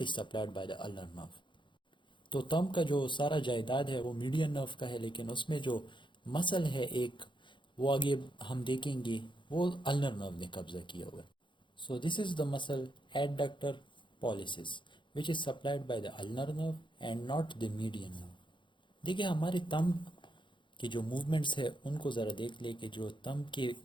is supplied by the ulnar nerve. تو تھمب کا جو سارا جائیداد ہے وہ میڈین نرو کا ہے، لیکن اس میں جو مسل ہے ایک، وہ آگے ہم دیکھیں گے وہ النر نرو نے قبضہ کیا ہوا ہے. سو دس از دا مسل ایڈڈکٹر پالیسس which is supplied by the ulnar nerve and not the median nerve. دیکھیں ہمارے تھمب کی جو موومنٹس ہے ان کو ذرا دیکھ لیں کہ جو تھمب کے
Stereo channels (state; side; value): late; right; 0.23 ms